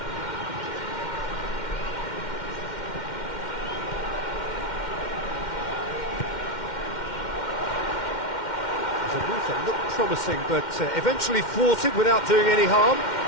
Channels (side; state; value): right; late; 2.1 ms